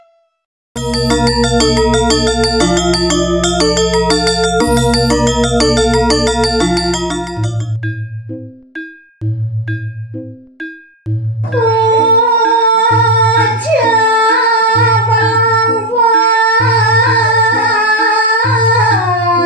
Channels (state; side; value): normal; both; correlation 0.42